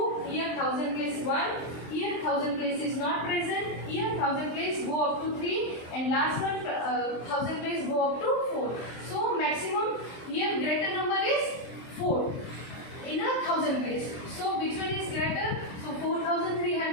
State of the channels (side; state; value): right; late; 23 ms